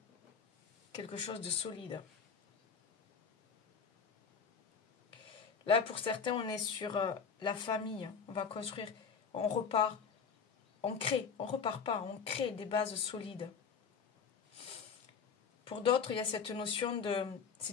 quelque chose de solide. Là, pour certains, on est sur la famille. On va construire, on repart, on crée, on repart pas, on crée des bases solides. Pour d'autres, il y a cette notion de...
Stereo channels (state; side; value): quieter; right; 6.1 dB